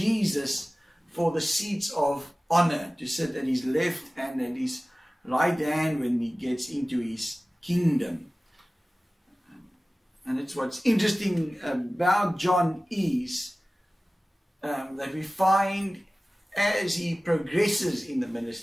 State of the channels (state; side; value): normal; both; correlation 0.97